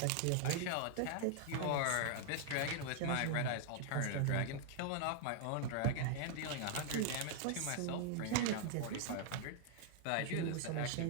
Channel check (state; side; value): different; both; correlation 0.00